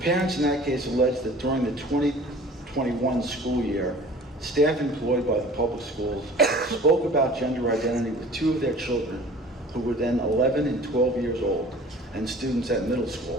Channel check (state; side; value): normal; both; correlation 0.45